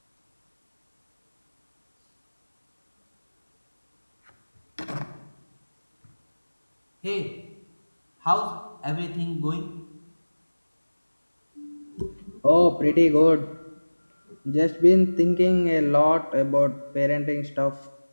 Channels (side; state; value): both; inverted; correlation -1.00